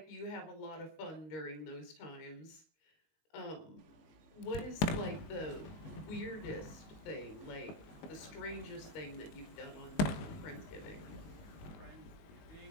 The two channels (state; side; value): late; right; 19 ms